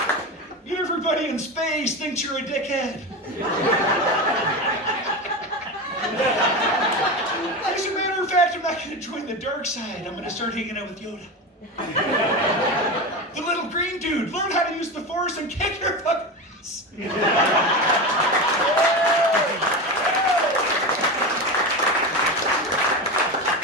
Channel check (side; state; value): both; normal; correlation 0.21